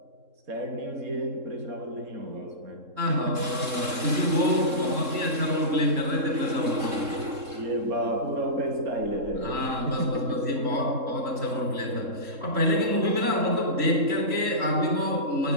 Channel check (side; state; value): left; late; 3.7 ms